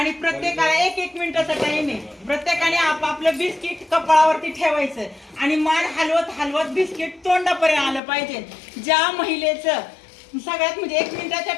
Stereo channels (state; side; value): drops out; right; at 8.0 s